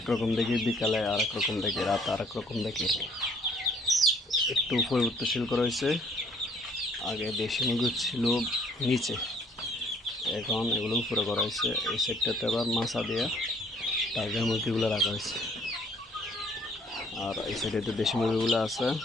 দেখি, বিকালে আর এক রকম দেখি, রাতে আর এক রকম দেখি। একটু পরিবর্তনশীল করা হয়েছে। আগে দেশি মুরগি ছিল নিচে, এখন এগুলো উপরে করা হয়েছে। এই সাইডটাতে আবার মাছা দিয়ে টাইগার মুরগিগুলো রাখা হয়েছে, আর এই সাইডে দেশি মুরগিগুলো আছে।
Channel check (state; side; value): normal; both; correlation 0.60